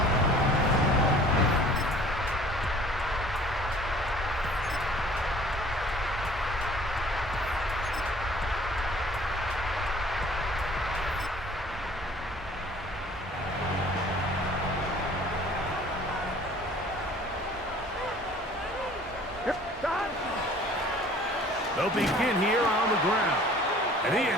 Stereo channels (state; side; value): normal; both; correlation 0.51